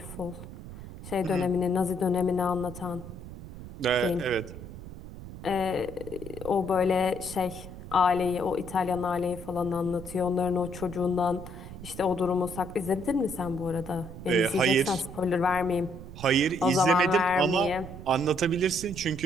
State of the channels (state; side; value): noise; right; rumble, 13 dB below the sound